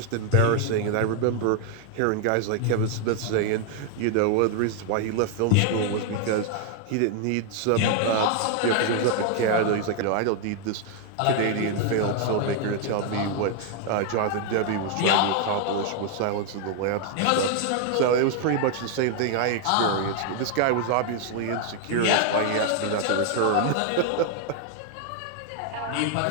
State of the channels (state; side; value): different; both; correlation 0.00